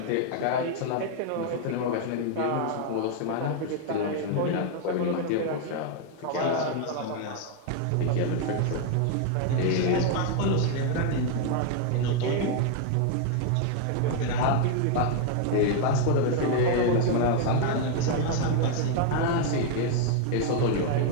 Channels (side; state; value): both; different; correlation 0.00